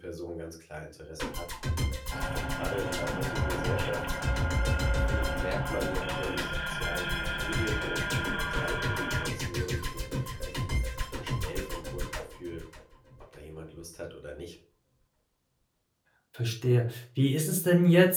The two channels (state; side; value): identical; both; correlation 1.00